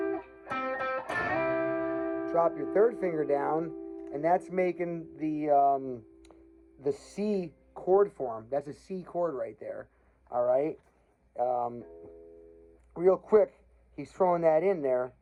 Drop your 3rd finger down, and that's making the C chord form. That's a C chord right there. All right. Real quick, he's throwing that in there,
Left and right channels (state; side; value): identical; both; correlation 1.00